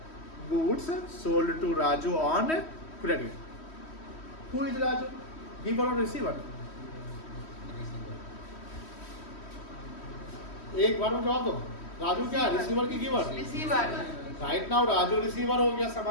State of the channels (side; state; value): right; late; 3.1 ms